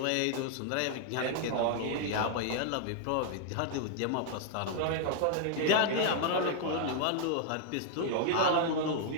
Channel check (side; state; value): both; different; correlation 0.00